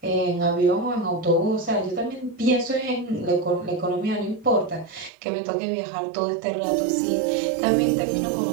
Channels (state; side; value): drops out; left; at 5.1 s